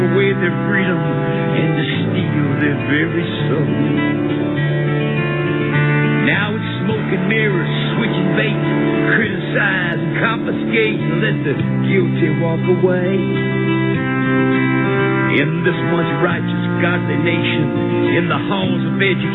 their freedom and to steal their very soul. Now it's smoke and mirrors, switching bait, criticize and confiscate and let the guilty walk away. In this once righteous, godly nation, in the halls of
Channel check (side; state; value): right; noise; rumble, 22 dB below the sound